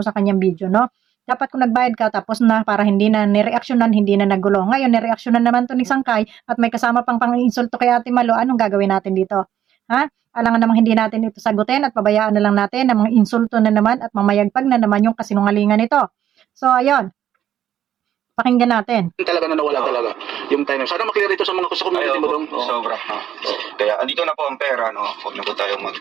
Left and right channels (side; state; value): left; quieter; 10.8 dB